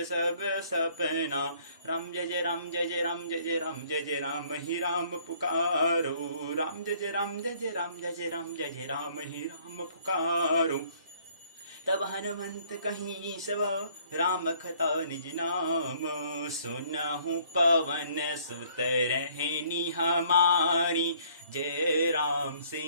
सब सपना। राम जय जय राम जय जय राम जय जय राम जय जय राम ही राम पुकारो, राम जय जय राम जय जय राम जय जय राम जय जय राम ही राम पुकारो, तब हनुमंत कहीं सब, राम कथा निज नाम, सुनहु पवन सुत रहनी हमारी, जय राम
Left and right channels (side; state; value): both; inverted; correlation -0.60